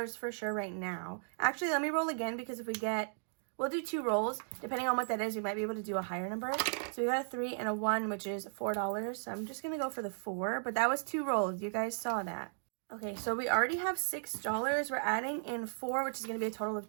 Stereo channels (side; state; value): left; silent; digital silence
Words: for sure right now. Actually, let me roll again, because if we get, we'll do 2 rolls. Depending on what that is, we might be able to do a higher number. So we got a 3 and a 1, which is $4. So I'm just going to go for the 4, but that was 2 rolls. You guys saw that. Okay, so we already have $6. We're adding in 4, which is going to be a total of